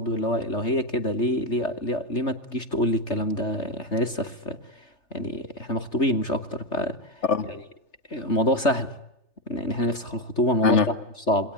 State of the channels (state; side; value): late; right; 3.3 ms